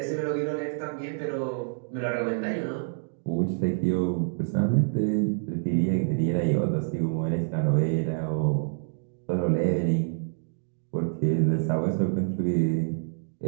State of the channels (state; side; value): silent; left; digital silence